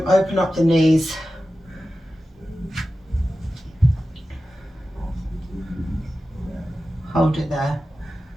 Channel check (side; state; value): both; normal; correlation 0.94